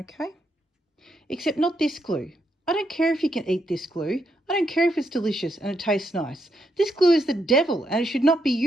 except not this glue. I don't care if you can eat this glue. I don't care if it's delicious and it tastes nice. This glue is the devil and it should not be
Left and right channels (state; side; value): normal; both; correlation 0.79